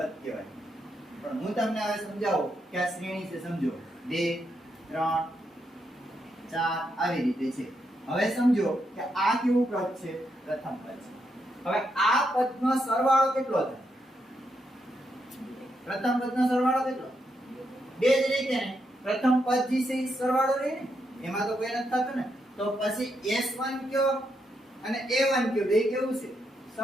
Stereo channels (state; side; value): normal; both; correlation 0.81